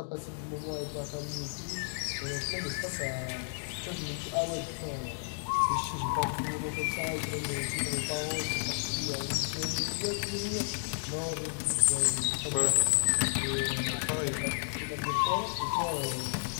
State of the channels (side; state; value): right; silent; digital silence